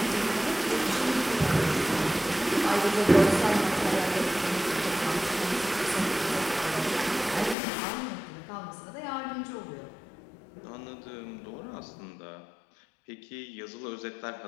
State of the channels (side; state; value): right; drops out; at 7.6 s